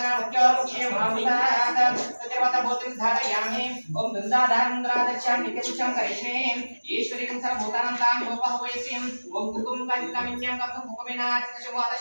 మహామృతాత్ తదేవత భూతిం ధారయామి. ఓం దుందాధారంద్రాదర్శాం నిత్యపుష్యం కరిష్మే ఈశ్వరీం సర్వభూతానాం తాం యోపహవయసిం. ఓం కుకుం కంకమిన్యం కంకం కుకుమినాచితశుభాత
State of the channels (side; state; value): both; inverted; correlation -1.00